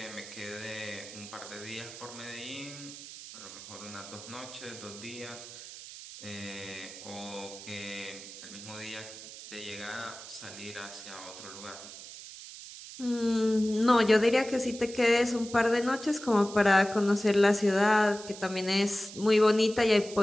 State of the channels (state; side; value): noise; right; hiss, 14 dB below the sound